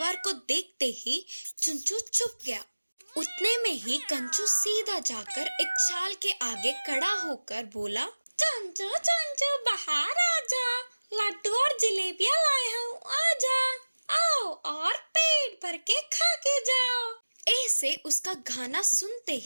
को देखते ही चुंचू चुप गया। उतने में ही कंचू सीधा जाकर एक चाल के आगे खड़ा होकर बोला, चंचू चंचू बाहर आजा, लड्डू और जलेबियां लाया हूँ, आजा, आओ और पेट भर के खा के जाओ। ऐसे उसका गाना सुनते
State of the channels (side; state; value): both; inverted; correlation -1.00